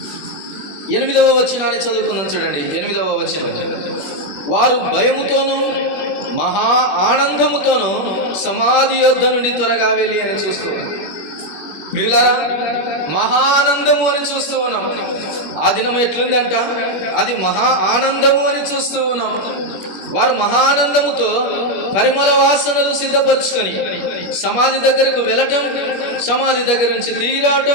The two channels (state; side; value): late; right; 21 ms